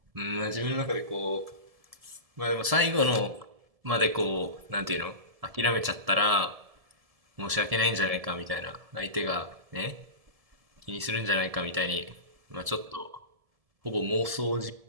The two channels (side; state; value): left; late; 1.7 ms